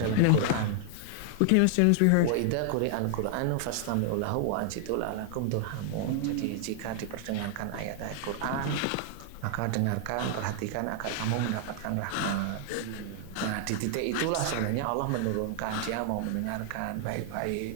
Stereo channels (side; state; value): both; different; correlation 0.00